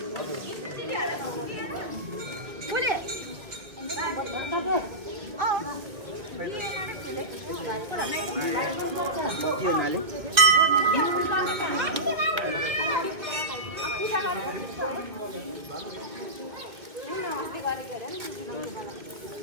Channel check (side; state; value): left; late; 1.8 ms